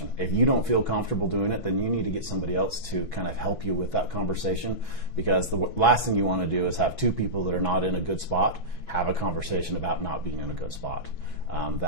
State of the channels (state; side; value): late; right; 6.1 ms